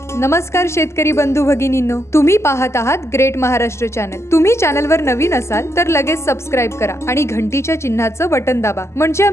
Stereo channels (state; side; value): late; right; 0.13 ms